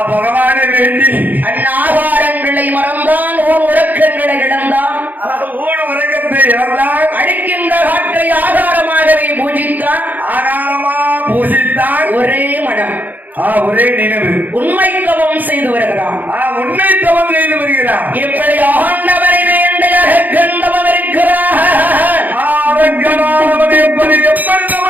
பகவானை வேண்டி அந்நாகாரங்களை மறந்தான், ஓர் உறக்கங்களை இழந்தான், ஊர் உலகத்தை இழந்தான், அடிக்கின்ற காற்றை ஆதாரமாகவே பூஜித்தான், ஆகாரமா பூசித்தான், ஒரே மனம், ஒரே நினைவு, உண்மை தவம் செய்து வருகிறான். உண்மை தவம் செய்து வருகிறான். இப்படி ஆண்டவரை வேண்டிய கண்டவம் இருக்கிறார். எப்படி எப்படி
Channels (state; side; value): late; left; 0.083 ms